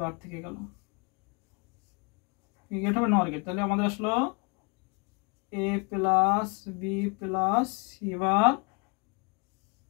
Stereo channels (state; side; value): quieter; right; 32.6 dB